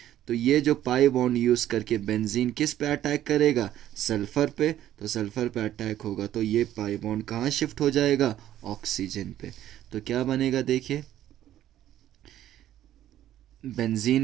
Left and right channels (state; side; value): quieter; left; 12.4 dB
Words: तो ये जो पाई बॉन्ड यूज़ करके बेंजीन किस पे अटैक करेगा? सल्फर पे। तो सल्फर पे अटैक होगा तो ये पाई बॉन्ड कहाँ शिफ्ट हो जाएगा? ऑक्सीजन पे। तो क्या बनेगा? देखिए